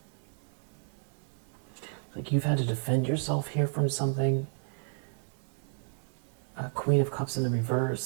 Like you've had to defend yourself here from something. Queen of Cups in the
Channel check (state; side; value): silent; left; 56 dB below the other